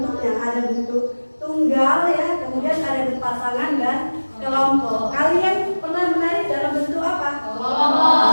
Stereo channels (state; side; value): inverted; both; correlation -1.00